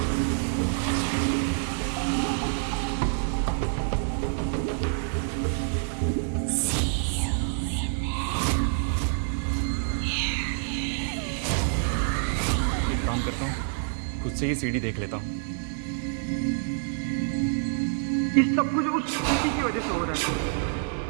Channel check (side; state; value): left; silent; 60 dB below the other